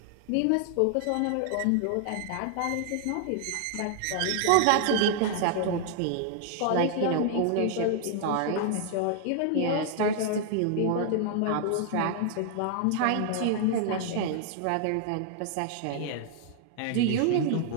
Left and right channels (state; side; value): different; both; correlation 0.00